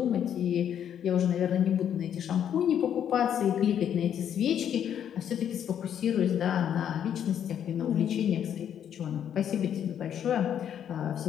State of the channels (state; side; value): quieter; right; 9.3 dB